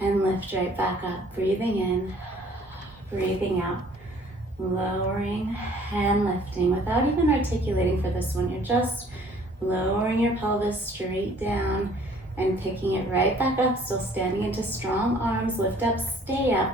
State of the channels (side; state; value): both; normal; correlation 0.56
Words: lift right back up. Breathing in, breathing out. Lowering and lifting without even articulating for this one. You're just lowering your pelvis straight down and picking it right back up. Still standing into strong arms. Lift up, stay